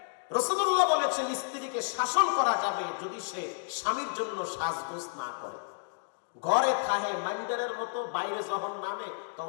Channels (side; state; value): right; silent; digital silence